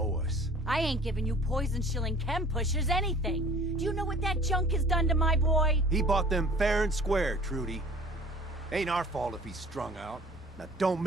us. I ain't giving you poison-shilling chem pushers anything. Do you know what that junk has done to my boy? He bought them fair and square, Trudy. Ain't our fault if he's strung out. Now don't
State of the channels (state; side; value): normal; both; correlation 0.49